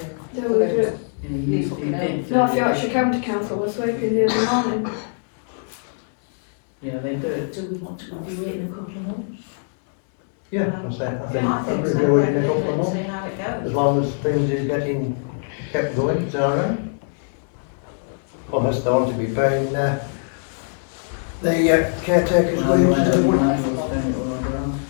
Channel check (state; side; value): silent; right; digital silence